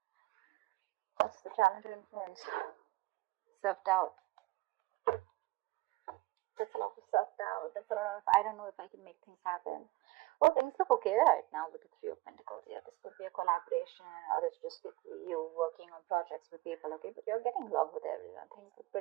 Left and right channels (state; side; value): quieter; left; 20.6 dB